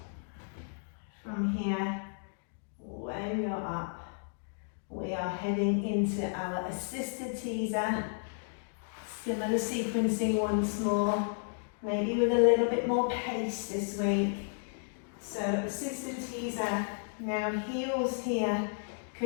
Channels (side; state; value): right; silent; digital silence